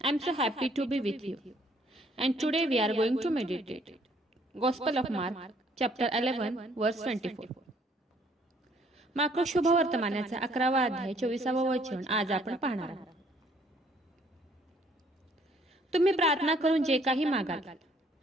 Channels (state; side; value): normal; both; correlation 0.63